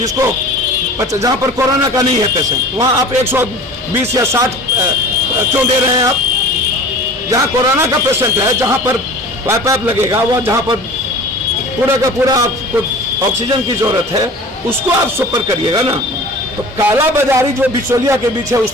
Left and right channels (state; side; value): normal; both; correlation 0.41